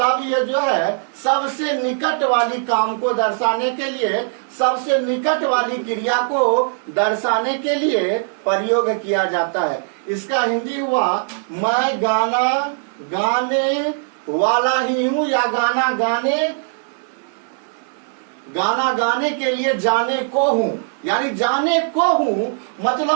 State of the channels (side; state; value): left; silent; digital silence